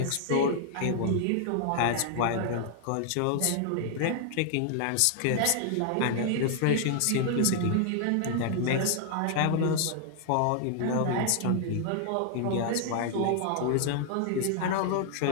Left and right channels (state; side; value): different; both; correlation 0.00